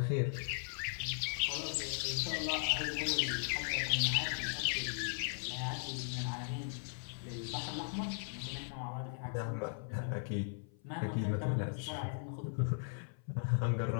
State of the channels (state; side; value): silent; right; 52 dB below the other